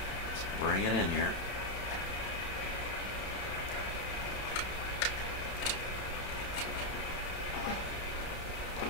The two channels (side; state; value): right; late; 31 ms